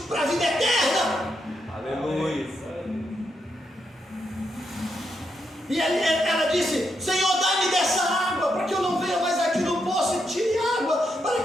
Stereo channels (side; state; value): both; normal; correlation 0.81